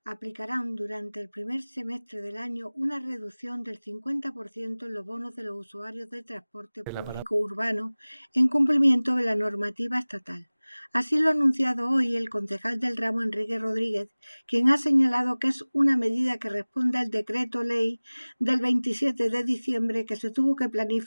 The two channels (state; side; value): inverted; both; correlation -1.00